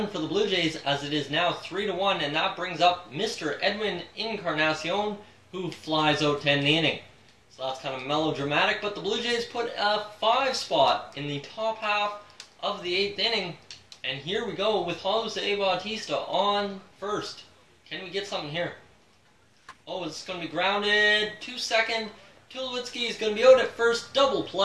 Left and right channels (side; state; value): both; identical; correlation 1.00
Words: for the Blue Jays as it is now 3-1, and that brings up Mr. Edwin Encarnacion, who flies out to end the inning. So that's kind of melodramatic, but the Blue Jays put a 5 spot in the top half of the 8th inning, and here we go with Jose Bautista on first. Can we get something here? Oh, it's going to be grounded. 2-2. Tulowitzki is going to be out at first. Double